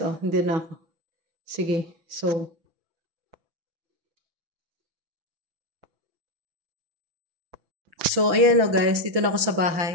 Oh, hindi na ako. Sige. So, ayan o guys. Dito na ako sa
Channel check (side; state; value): left; late; 6.0 ms